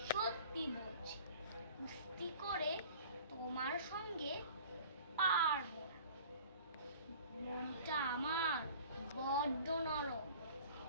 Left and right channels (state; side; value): inverted; both; correlation -0.45